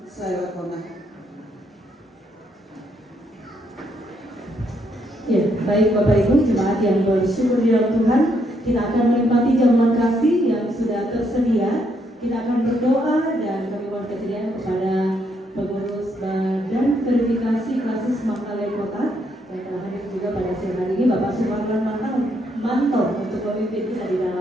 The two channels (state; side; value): normal; both; correlation 0.74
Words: saya kona. Ya, baik Bapak Ibu jemaat yang bersyukur di dalam Tuhan, kita akan menikmati jamuan kasih yang sudah tersedia. Kita akan berdoa dan kami mohon kesediaan kepada pengurus Badan Verifikasi Klasis Mangkalai Kota yang telah hadir juga pada siang hari ini, Bapak Sumarlan Manto untuk memimpin kita di